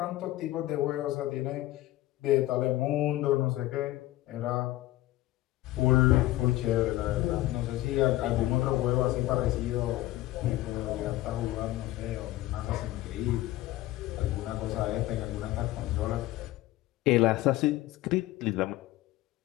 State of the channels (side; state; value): right; quieter; 16.5 dB